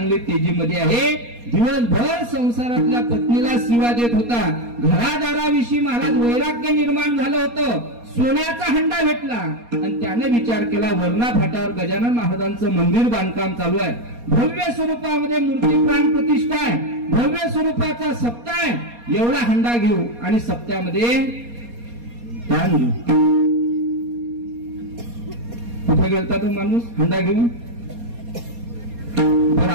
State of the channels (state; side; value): late; left; 4.2 ms